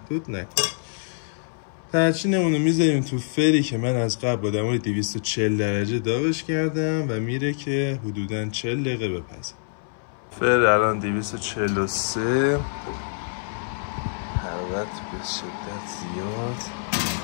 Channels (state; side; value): silent; right; 62 dB below the other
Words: نکنید. ترچینمون رو میذاریم تو فری که من از قبل با دمای 240 درجه داغش کردم و میره که حدوداً 40 دقیقه بپزه. فر الان 243، حرارت به شدت زیاد.